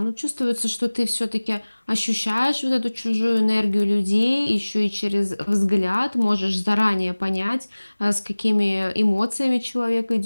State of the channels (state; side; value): inverted; both; correlation -1.00